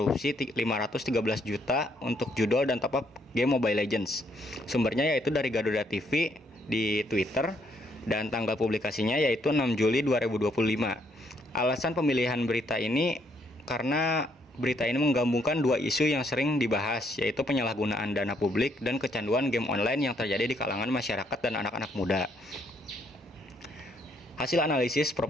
513 juta untuk judul dan top up game Mobile Legends. Sumbernya yaitu dari Garuda TV di Twitter dan tanggal publikasinya yaitu 6 Juli 2025. Alasan pemilihan berita ini karena berita ini menggabungkan dua isu yang sering dibahas, yaitu penyalahgunaan dana publik dan kecanduan game online yang terjadi di kalangan masyarakat dan anak-anak muda. Hasil analisis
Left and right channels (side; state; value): both; normal; correlation 0.71